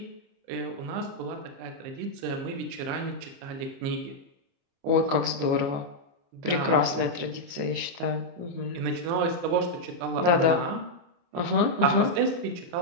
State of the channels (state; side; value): late; left; 28 ms